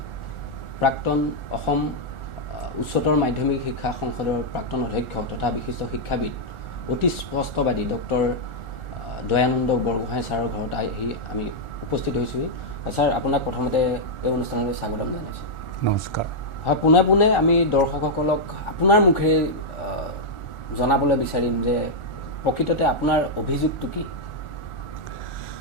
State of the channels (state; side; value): late; right; 1.4 ms